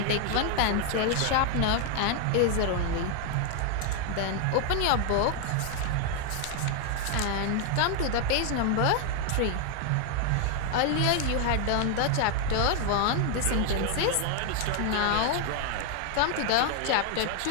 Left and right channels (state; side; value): different; both; correlation 0.01